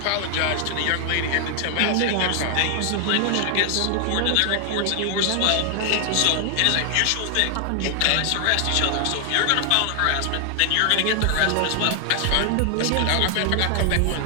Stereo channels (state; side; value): different; both; correlation 0.00